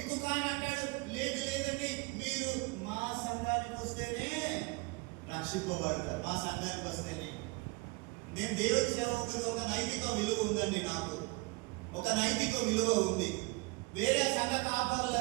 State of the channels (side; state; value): left; quieter; 26.7 dB